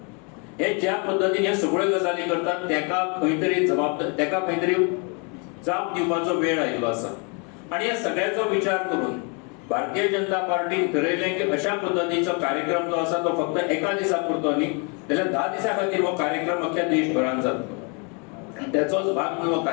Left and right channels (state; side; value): quieter; right; 34.7 dB